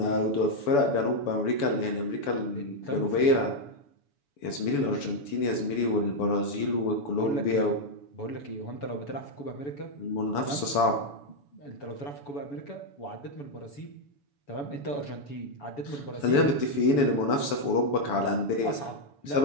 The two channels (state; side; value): late; right; 7.0 ms